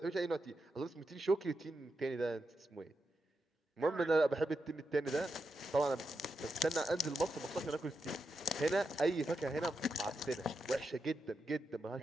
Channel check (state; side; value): normal; both; correlation 0.86